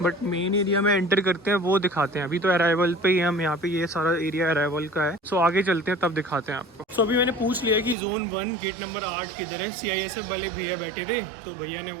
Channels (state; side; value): drops out; left; at 8.0 s